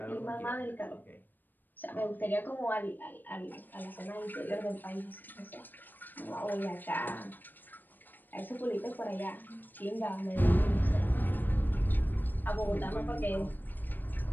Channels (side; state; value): right; late; 0.090 ms